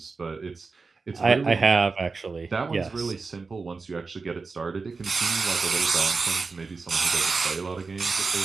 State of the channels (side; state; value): left; quieter; 4.3 dB